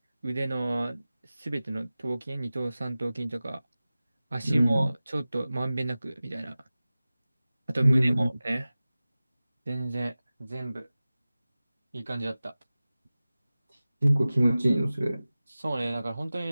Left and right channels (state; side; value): inverted; both; correlation -0.97